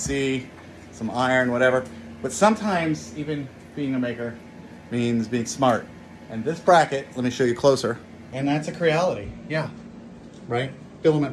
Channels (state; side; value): identical; both; correlation 1.00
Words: some iron, whatever. But sometimes even being a maker means being smart. And this bracket, let me show you closer. And that's a Creality, yeah, right? Filament